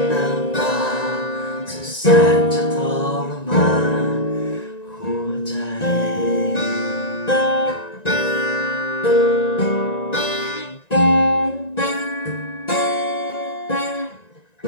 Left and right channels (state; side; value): late; right; 1.9 ms